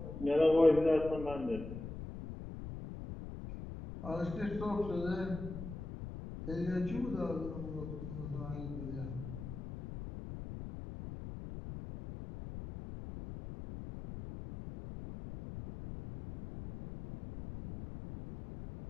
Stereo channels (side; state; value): left; noise; rumble, 9 dB below the sound